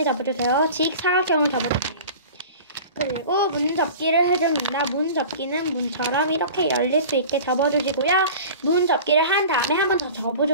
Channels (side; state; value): both; inverted; correlation -0.39